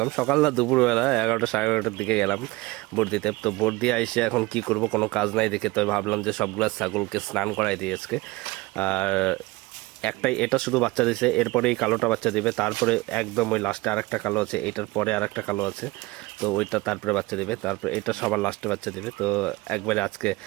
সকাল না, দুপুরবেলা 11টা সাড়ে 11টার দিকে গেলাম ভোট দিতে। তো ভোট দিয়ে এসে এখন কি করব, কোনো কাজ নাই দেখে তো ভাবলাম যে সবগুলা ছাগলকে স্নান করাই দিই আজকে। আর একটাই, এটা শুধু বাচ্চা দিছে, এরপরে এই কালোটা বাচ্চা দিবে, তারপরে একদম ওই লাস্টে আরেকটা কালো আছে, এটার পরে আরেকটা কালো আছে, তো ওইটা তারপরে বাচ্চা দিবে, তারপরে এটা সবার লাস্টে বাচ্চা দিবে। তো একবারে আজকে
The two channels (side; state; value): left; quieter; 21.8 dB